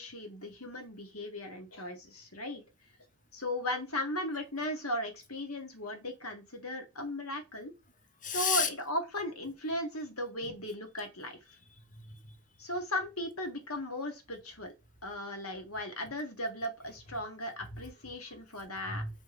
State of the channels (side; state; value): both; normal; correlation -0.06